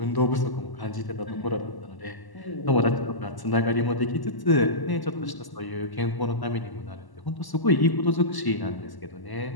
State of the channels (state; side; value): late; right; 1.0 ms